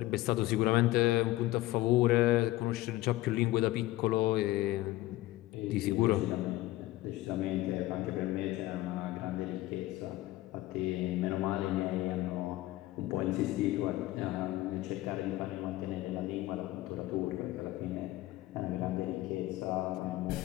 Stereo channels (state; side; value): quieter; right; 17.2 dB